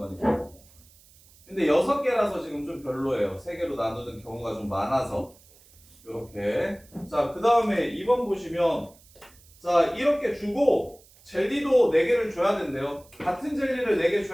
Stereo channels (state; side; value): noise; right; hiss, 27 dB below the sound